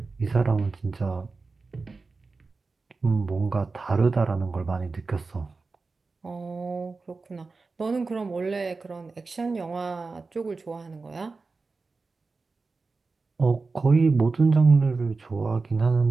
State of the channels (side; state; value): left; quieter; 4.0 dB